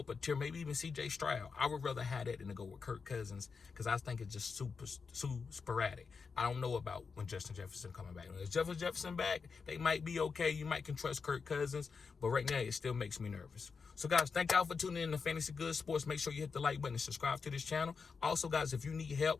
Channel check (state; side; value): quieter; right; 5.2 dB